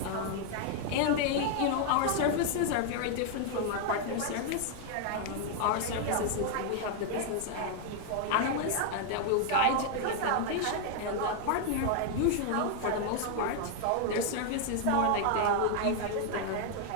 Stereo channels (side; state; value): both; different; correlation 0.00